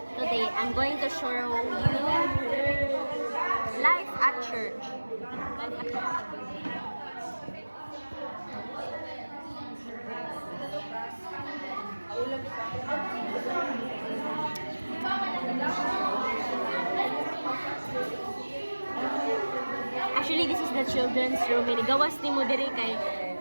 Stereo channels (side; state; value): both; inverted; correlation -1.00